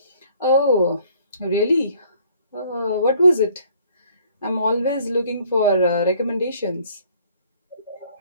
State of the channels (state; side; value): inverted; both; correlation -0.59